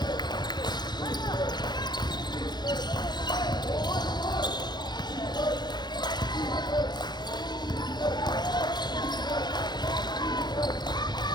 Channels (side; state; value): right; late; 0.21 ms